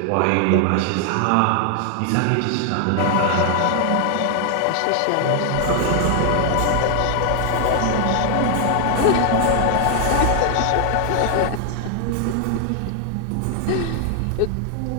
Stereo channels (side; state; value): both; different; correlation 0.00